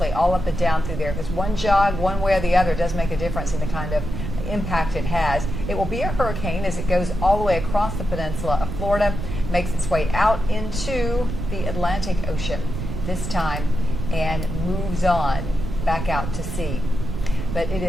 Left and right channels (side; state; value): right; noise; rumble, 5 dB below the sound